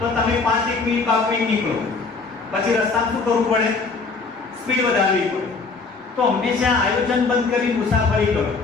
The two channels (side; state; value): right; quieter; 4.2 dB